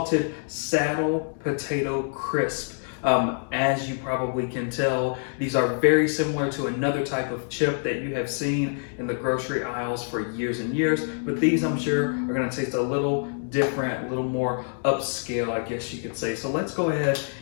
saddle potato crisp. As you probably can tell, these are very similar to another type of chip that you have seen in the grocery aisles for years and years, but these I'm sure are gonna taste a little different, a little more upscale, I guess you could say. So let's go ahead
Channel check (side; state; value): right; silent; 59 dB below the other